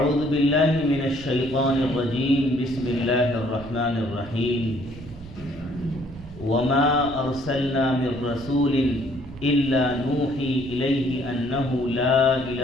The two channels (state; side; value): noise; right; rumble, 16 dB below the sound